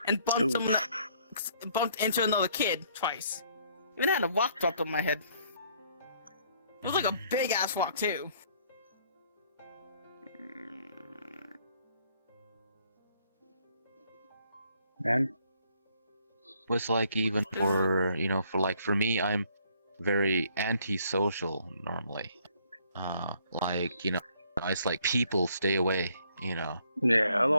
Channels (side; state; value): both; inverted; correlation -0.65